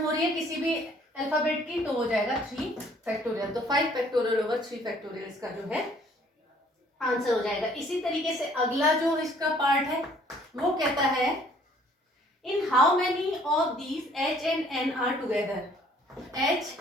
रही है किसी भी अल्फाबेट की तो हो जाएगा 3 फैक्टोरियल, तो 5 फैक्टोरियल ओवर 3 फैक्टोरियल इसका जो है आंसर हो जाएगा। इसी तरीके से अगला जो इसका पार्ट है वो कहता है in how many of these H and N are together, H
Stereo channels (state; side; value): normal; both; correlation 0.59